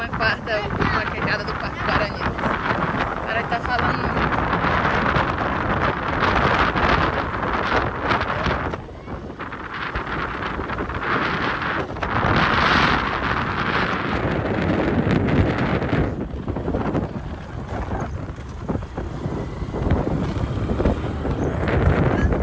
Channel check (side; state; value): both; identical; correlation 1.00